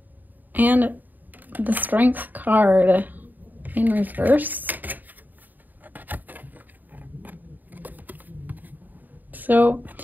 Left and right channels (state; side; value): late; left; 0.087 ms